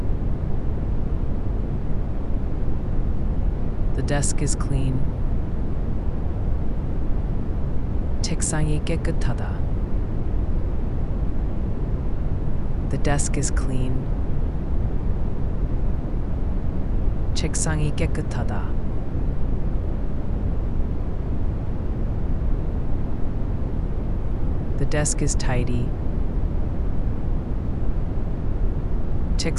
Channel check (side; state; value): both; identical; correlation 1.00